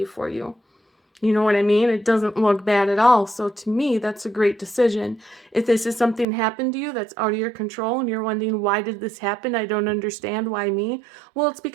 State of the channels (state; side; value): drops out; left; at 6.2 s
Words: for you. You know what I mean? It doesn't look bad at all. So to me, that's a great decision. If this is something happened to you that's out of your control and you're wondering, why did this happen? I don't understand. Why me? Well, it's